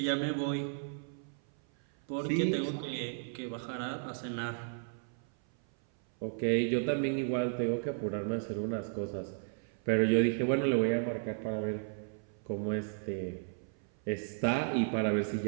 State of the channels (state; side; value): silent; left; 55 dB below the other